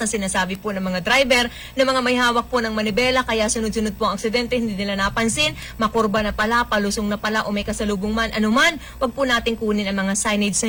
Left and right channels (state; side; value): identical; both; correlation 1.00